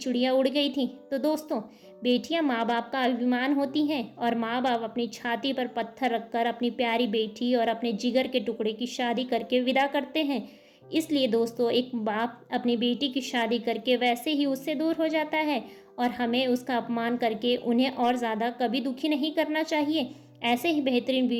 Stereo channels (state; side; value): identical; both; correlation 1.00